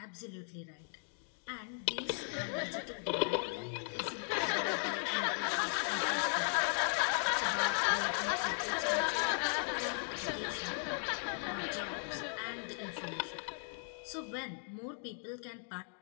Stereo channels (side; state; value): right; silent; 53 dB below the other